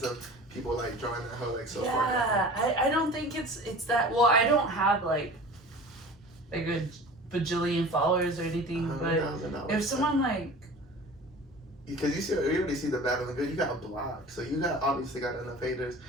of people like drawing that hoe like so far down. Yeah, I don't think it's that. Well, I don't have like a bajillion followers or anything, but $100,000. if someone like, because you already see the bad and the good, you got blocked, so you obviously got enough haters,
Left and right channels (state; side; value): normal; both; correlation 0.40